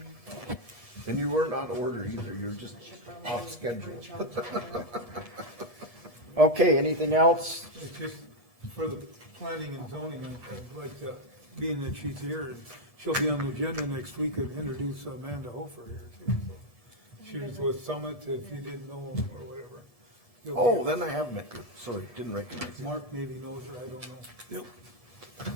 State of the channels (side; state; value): right; late; 1.7 ms